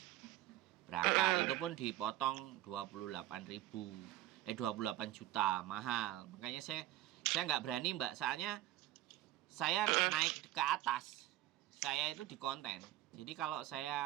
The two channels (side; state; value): left; quieter; 15.0 dB